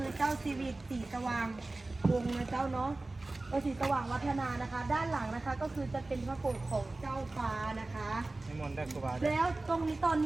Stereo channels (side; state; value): left; quieter; 3.0 dB